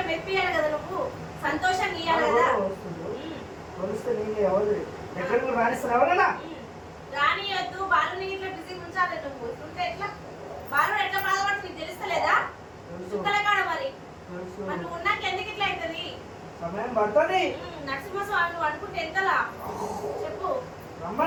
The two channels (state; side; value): identical; both; correlation 1.00